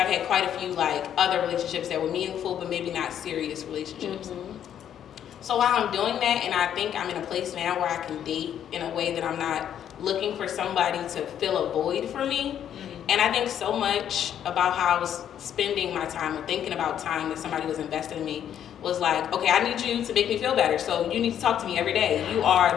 I've had quite a few like other relationships that were meaningful but maybe not serious relationships. So while I'm doing that, and I think I'm in a place now where I can date in a way that I'm not looking for somebody to fill a void for me. And I think so much about how I was spending my time or thinking about time that somebody was investing in me was like, okay, I need you to make me feel better. So you need to talk to me every day. You are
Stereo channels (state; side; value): quieter; right; 9.8 dB